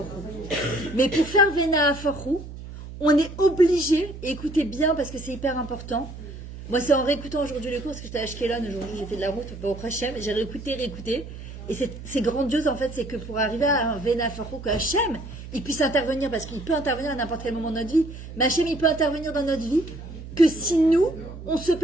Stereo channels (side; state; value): right; noise; hum, 12 dB below the sound